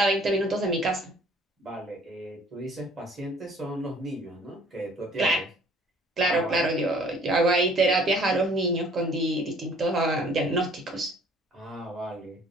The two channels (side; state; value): both; normal; correlation 0.55